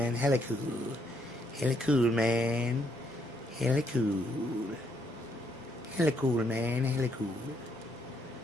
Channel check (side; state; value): both; normal; correlation 0.73